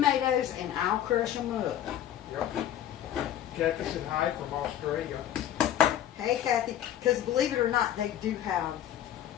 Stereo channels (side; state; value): right; quieter; 11.3 dB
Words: and I'll crush them up. Yep. Kathy said hi from Australia. Hey Kathy, because believe it or not, they do have